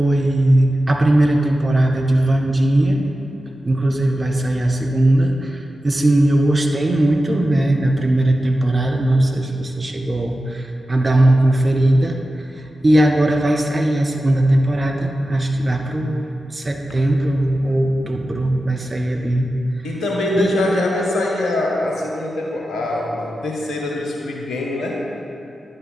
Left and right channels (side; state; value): both; normal; correlation 0.93